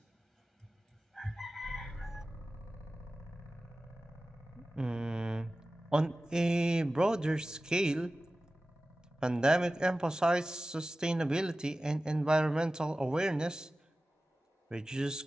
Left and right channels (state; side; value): normal; both; correlation 0.95